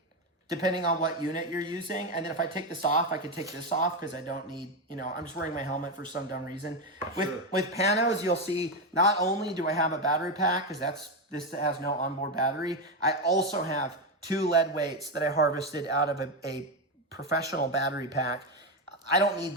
depending on what unit you're using. And then if I take this off, I could take this off because I don't need, I'm just wearing my helmet for some dumb reason. With panos, you'll see not only do I have a battery pack, because this has no onboard battery, I also have 2 lead weights that I harvested out of a professional battery pack. I don't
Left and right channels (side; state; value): both; normal; correlation 0.10